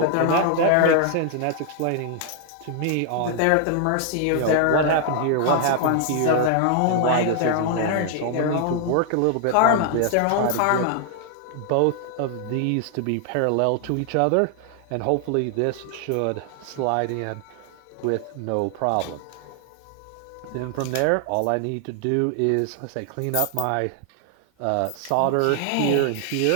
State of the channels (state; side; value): different; both; correlation 0.00